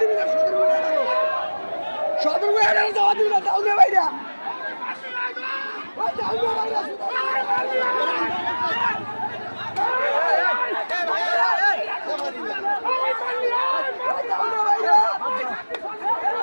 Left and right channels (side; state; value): both; inverted; correlation -1.00